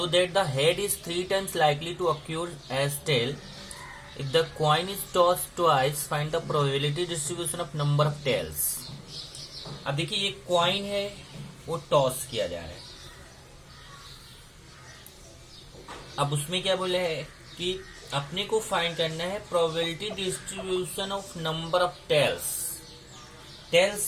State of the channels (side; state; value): both; identical; correlation 1.00